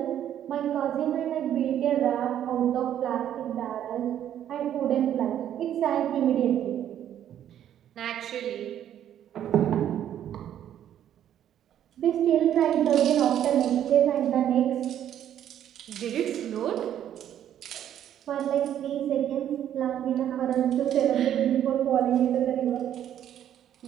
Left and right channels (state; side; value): quieter; left; 10.6 dB